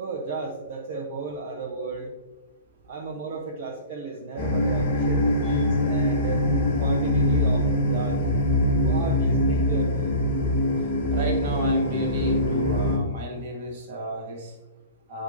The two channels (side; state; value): both; inverted; correlation -0.38